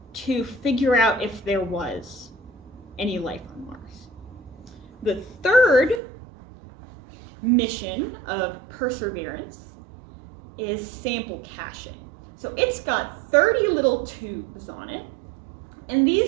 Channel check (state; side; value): drops out; left; at 6.0 s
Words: to figure out if there was any life on Mars? The third mission of Perseverance is sample caching. So it's got 30 little tubes on it, and